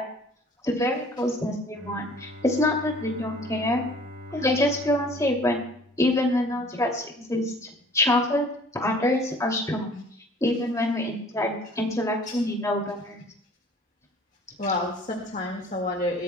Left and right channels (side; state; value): both; normal; correlation 0.51